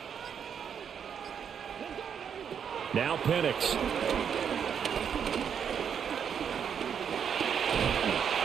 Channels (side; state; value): left; quieter; 7.7 dB